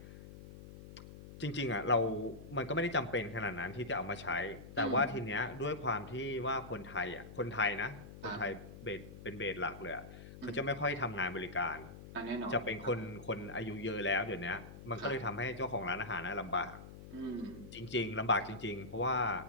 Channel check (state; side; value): noise; left; hum, 14 dB below the sound